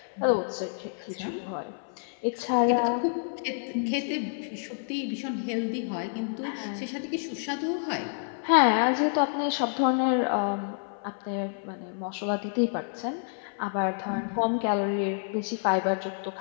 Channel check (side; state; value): right; silent; 59 dB below the other